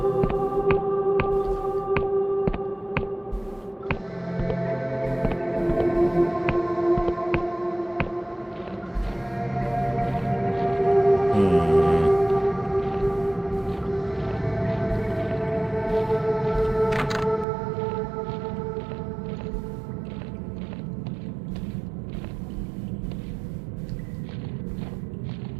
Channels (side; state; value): left; drops out; at 17.4 s